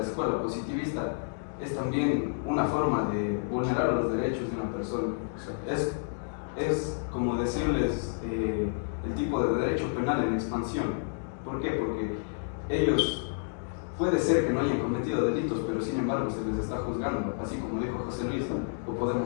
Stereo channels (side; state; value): right; silent; digital silence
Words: escuela positivista es también una forma de vulnerar los derechos de una persona. Es como decirles el tipo de derecho penal en expansión. ¿Por qué? Porque ellos puede ser que no hayan cometido delitos, pero sin embargo se les está juzgando, así como dijo José Luis, o